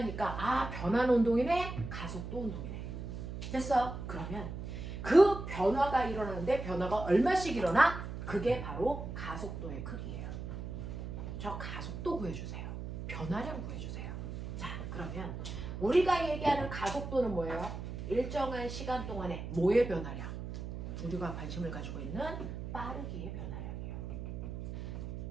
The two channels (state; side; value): noise; right; hum, 7 dB below the sound